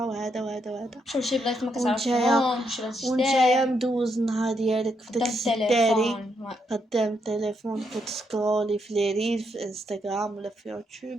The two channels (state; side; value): normal; both; correlation 0.78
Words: وهذا وهذا وهذا، شوف شي بلايص ما كتعرفهمش، ونتايا مدوز النهار ديالك في داك السداري قدام التليفون، كتسكرولي في لي ريل في انستغرام ولا في